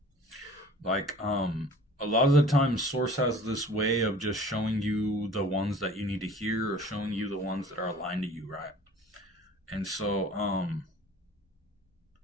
Like, a lot of the time, Source has this way of just showing you the ones that you need to hear, or showing you the ones that are aligned to you, right? And so,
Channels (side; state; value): both; normal; correlation 0.47